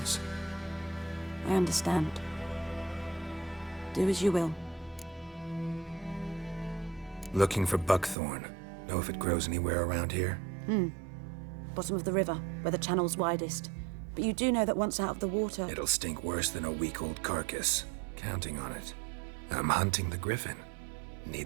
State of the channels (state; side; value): drops out; left; at 8.2 s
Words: I understand. Do as you will. Looking for buckthorn. Know if it grows anywhere around here? Bottom of the river, where the channel's widest. But you do know that once out of the water... It'll stink worse than a week-old carcass. Counting on it. I'm hunting the griffin.